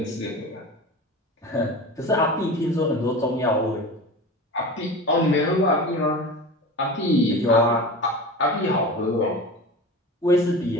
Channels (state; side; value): normal; both; correlation 0.32